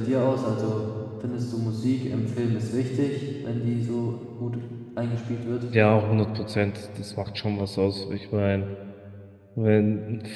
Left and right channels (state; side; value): identical; both; correlation 1.00